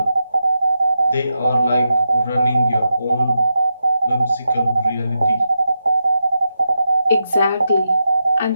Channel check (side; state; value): both; inverted; correlation -0.87